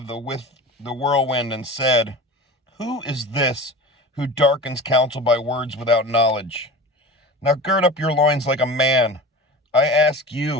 the whirlwind and said, Who is this who darkens counsel by words without knowledge? Now gird up your loins like a man. I ask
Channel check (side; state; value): both; normal; correlation 0.34